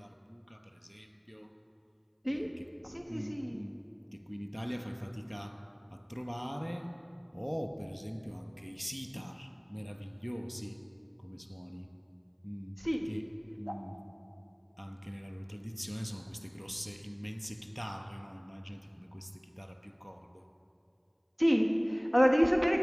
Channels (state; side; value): identical; both; correlation 1.00